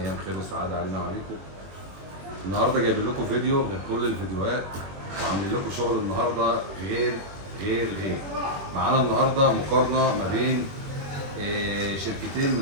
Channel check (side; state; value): left; late; 21 ms